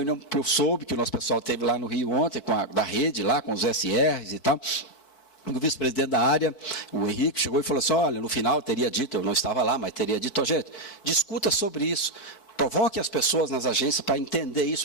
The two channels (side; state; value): right; late; 4.6 ms